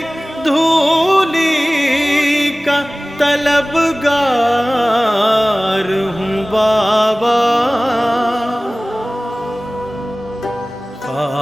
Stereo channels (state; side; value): normal; both; correlation 0.98